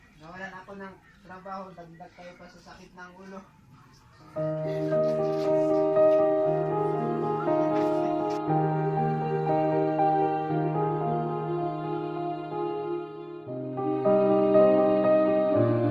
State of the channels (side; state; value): both; identical; correlation 1.00